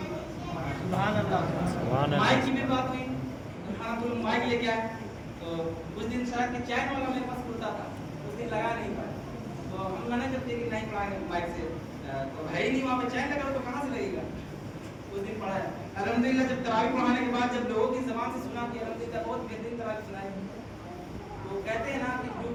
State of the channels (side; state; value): both; identical; correlation 1.00